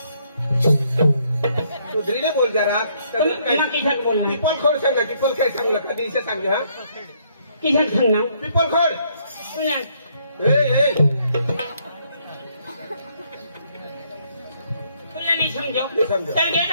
सुधरीने बोल जरा किसान बोल पिपल खोड सांग ना पिपल खेळ सांग ना कधी इथे सांग हा किसान सांगणार पिपल खोड तुला ए नाही समजो नाही समजो. तर घे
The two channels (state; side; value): inverted; both; correlation -0.69